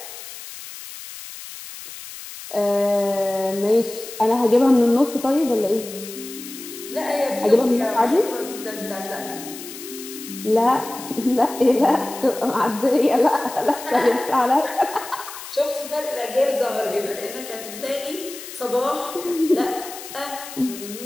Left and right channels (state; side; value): noise; left; hiss, 13 dB below the sound